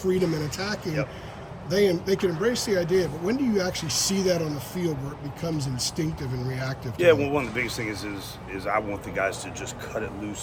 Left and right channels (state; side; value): identical; both; correlation 1.00